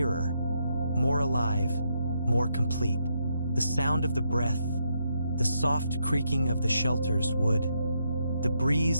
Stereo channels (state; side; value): inverted; both; correlation -0.79